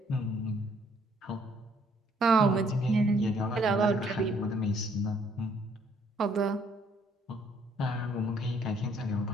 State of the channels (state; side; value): normal; both; correlation 0.65